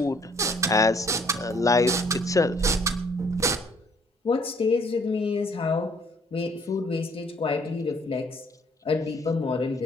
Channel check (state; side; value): normal; both; correlation 0.61